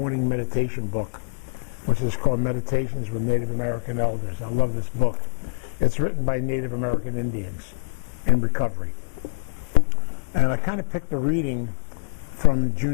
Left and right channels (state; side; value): silent; right; digital silence